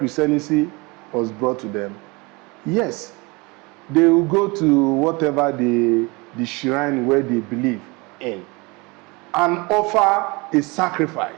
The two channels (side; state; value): left; quieter; 26.4 dB